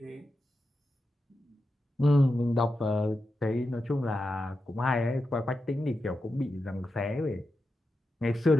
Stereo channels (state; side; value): normal; both; correlation 0.89